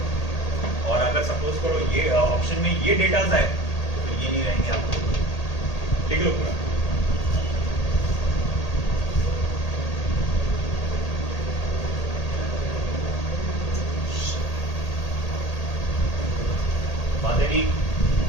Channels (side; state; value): right; late; 1.8 ms